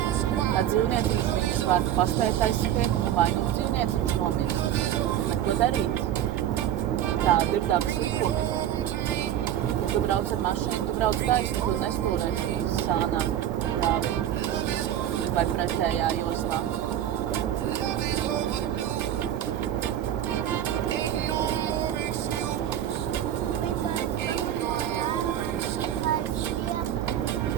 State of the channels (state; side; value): quieter; left; 11.1 dB